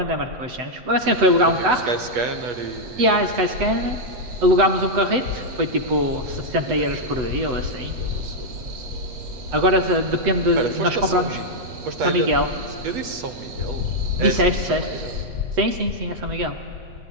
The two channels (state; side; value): late; left; 7.9 ms